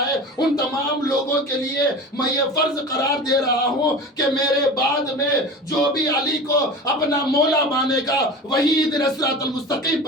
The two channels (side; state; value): both; normal; correlation 0.33